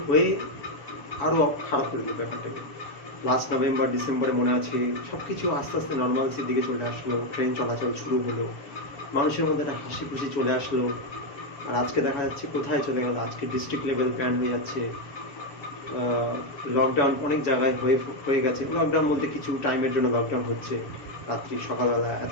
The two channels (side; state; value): right; late; 7.1 ms